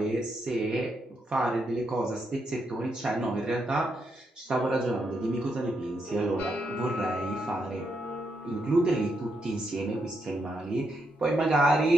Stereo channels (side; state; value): both; normal; correlation 0.80